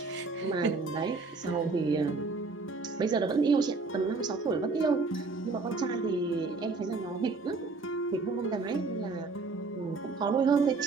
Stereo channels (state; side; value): quieter; left; 4.0 dB